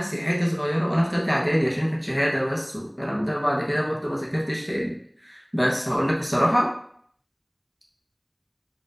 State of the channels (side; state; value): both; identical; correlation 1.00